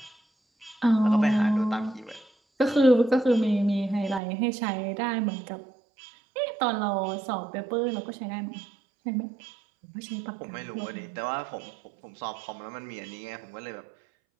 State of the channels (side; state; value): left; drops out; at 4.2 s